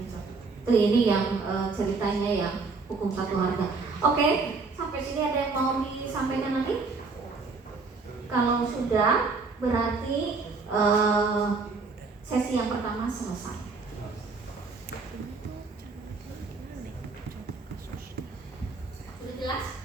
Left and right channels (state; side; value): quieter; left; 4.2 dB